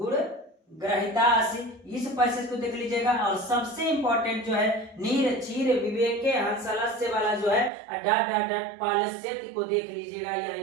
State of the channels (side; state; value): left; drops out; at 7.7 s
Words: ग्रहितासी, इस पैसेज को देख लीजिएगा। और सबसे इंपॉर्टेंट जो है नीर चीर विवेके हंसलस्य वाला जो है डॉट डॉट डॉट पालस्यति को देख लीजिएगा, यह